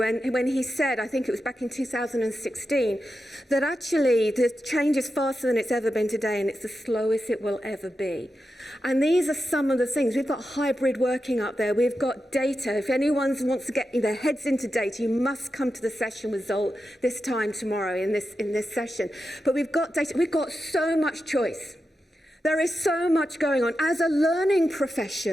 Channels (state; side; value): normal; both; correlation 0.89